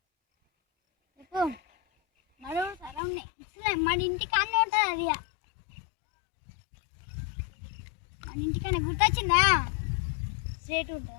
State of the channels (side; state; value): right; drops out; at 3.0 s